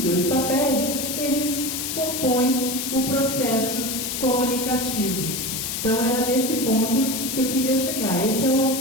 dois papéis, eles compõem o processo comunicativo. Então, era nesse ponto que eu queria chegar. Esse é o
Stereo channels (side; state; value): left; noise; hiss, 3 dB below the sound